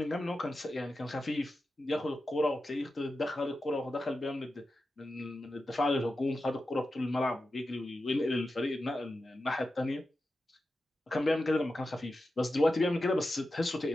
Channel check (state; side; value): normal; both; correlation 0.92